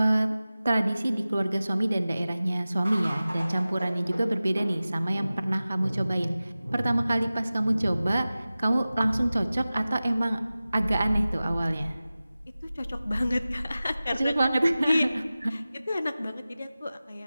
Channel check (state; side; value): inverted; both; correlation -0.96